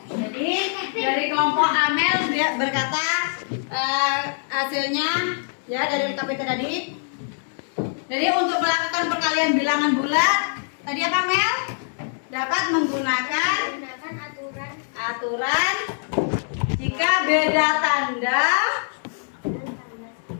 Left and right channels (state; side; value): silent; right; digital silence